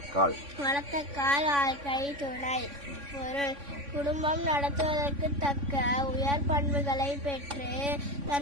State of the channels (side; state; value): left; late; 3.5 ms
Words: வாழ்க்கை துணை. பொருள்: குடும்பம் நடத்துவதற்கு தக்க உயர் பண்புகளை பெற்று